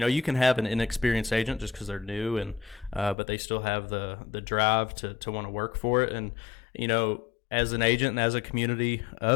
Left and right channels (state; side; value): drops out; right; at 3.2 s